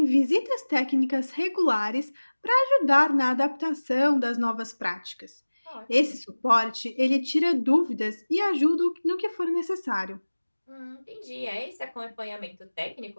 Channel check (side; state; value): both; inverted; correlation -1.00